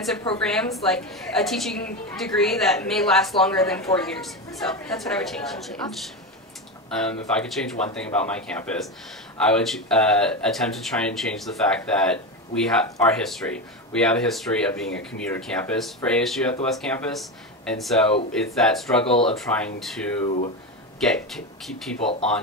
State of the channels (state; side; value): normal; both; correlation 0.17